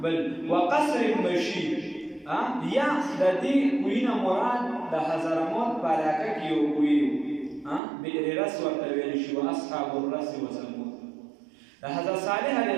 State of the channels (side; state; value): left; drops out; at 7.8 s